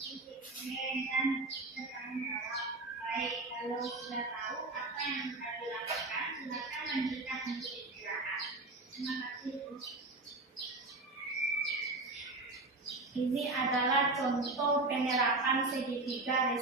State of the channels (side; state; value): left; quieter; 3.2 dB